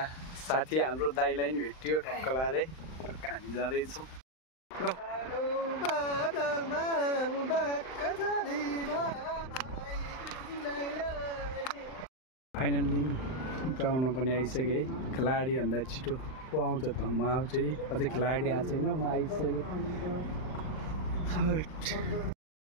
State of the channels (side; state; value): right; late; 39 ms